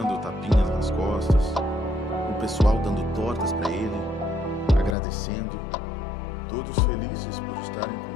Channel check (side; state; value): right; drops out; at 5.0 s